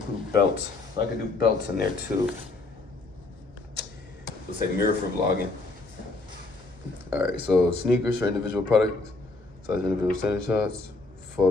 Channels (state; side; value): quieter; right; 3.3 dB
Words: belts. So I could do belts in there too. Let's say mirror for vlogging. All right, so sneakers for individual products, size individual standing shots,